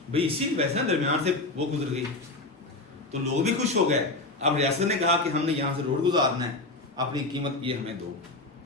भाई, इसी वैसे ना दरमियान से वो गुजर गई तो लोग भी खुश हो गए। अब रियासत ने कहा कि हमने यहाँ से रोड गुजारना है, अपनी कीमत ये हमें दो,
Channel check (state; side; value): quieter; right; 3.1 dB